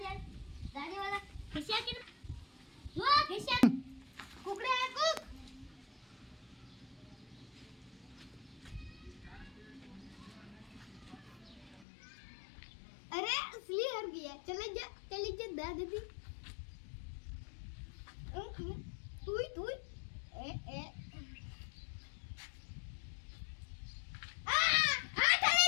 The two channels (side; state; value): right; drops out; at 11.9 s